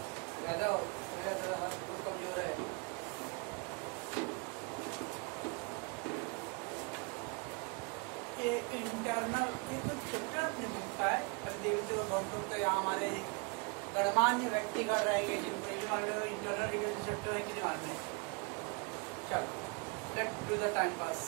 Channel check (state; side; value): quieter; left; 32.2 dB